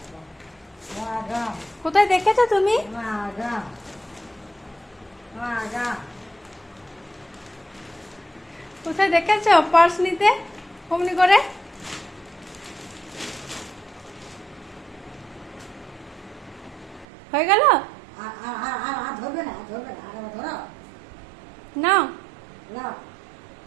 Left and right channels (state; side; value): drops out; left; at 17.1 s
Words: কোথায় দেখেছো তুমি? কোথায় দেখেছো পার্স নিতে অমনি করে? হয়ে গেল? নাও।